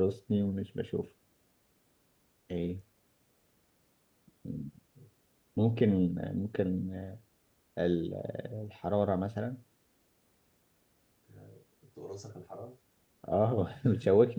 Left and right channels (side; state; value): both; identical; correlation 1.00